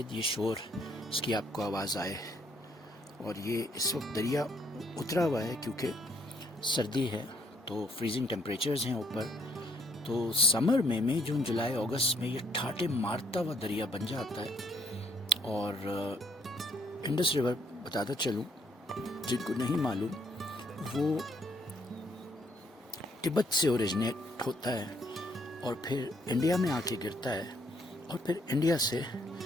یہ شور اس کی آپ کو آواز آئے، اور یہ اس وقت دریا اترا ہوا ہے کیونکہ سردی ہے تو فریزنگ ٹیمپریچرز ہیں اوپر. تو سمر میں مئی جون جولائی اگست میں یہ ٹھاٹے مارتا ہوا دریا بن جاتا ہے. اور انڈس ریور بتاتا چلوں جن کو نہیں معلوم، وہ تبت سے اوریجنیٹ ہوتا ہے اور پھر انڈیا میں آ کے گرتا ہے، اور پھر انڈیا سے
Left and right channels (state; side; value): normal; both; correlation 0.68